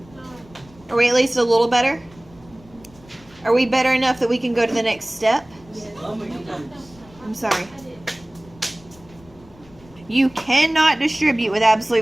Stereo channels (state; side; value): noise; left; rumble, 25 dB below the sound